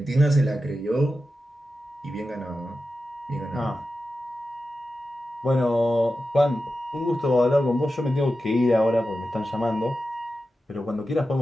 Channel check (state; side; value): normal; both; correlation 0.92